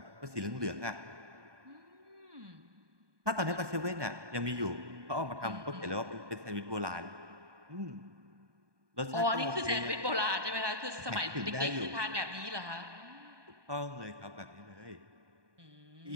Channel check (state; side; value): late; left; 1.2 ms